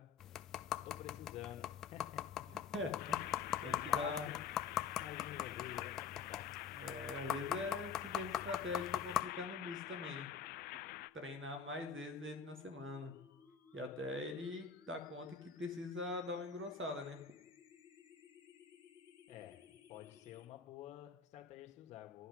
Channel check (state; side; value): quieter; right; 6.6 dB